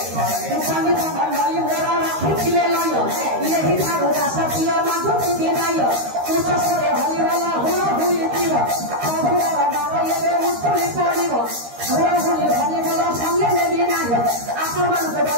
শুনি ধনী বল সঙ্গে নেবি না আসমান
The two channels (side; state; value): left; late; 13 ms